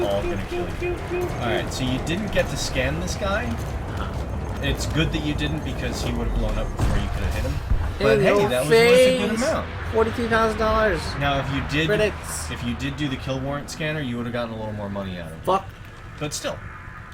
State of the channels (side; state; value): both; identical; correlation 1.00